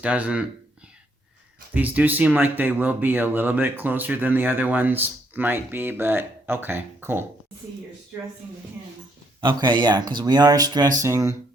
doesn't... These do seem like they will be a little bit closer than the other ones might be, but okay, cool. See, you're stressing the hinge. Okay, yeah, because we are stressing...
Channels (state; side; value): normal; both; correlation 0.71